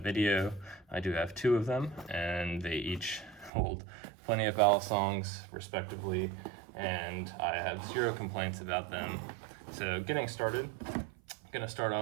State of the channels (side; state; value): left; drops out; at 3.5 s